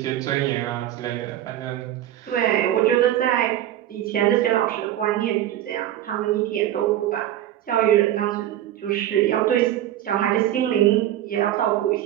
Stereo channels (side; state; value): left; quieter; 12.4 dB